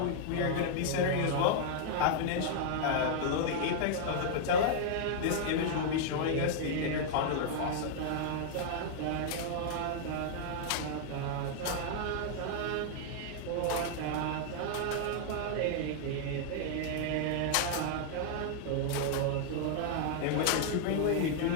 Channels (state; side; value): different; both; correlation -0.01